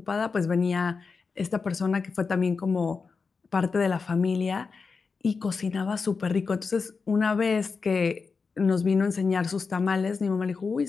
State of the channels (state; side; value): quieter; right; 4.8 dB